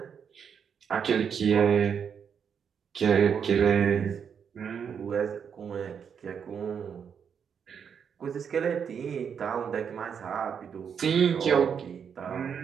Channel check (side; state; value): left; quieter; 7.3 dB